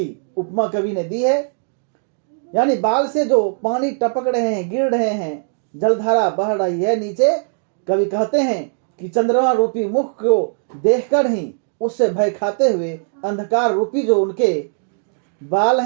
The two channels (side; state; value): left; silent; digital silence